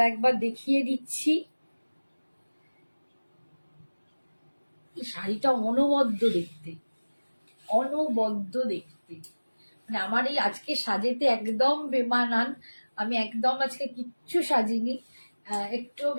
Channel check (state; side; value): inverted; both; correlation -1.00